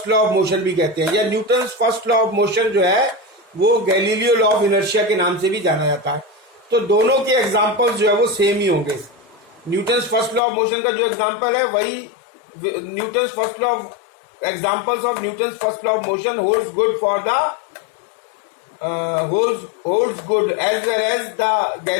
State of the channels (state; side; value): drops out; right; at 10.4 s